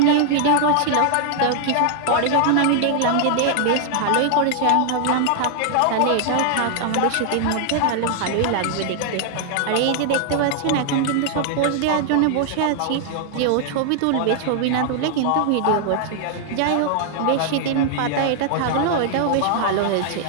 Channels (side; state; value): both; different; correlation 0.00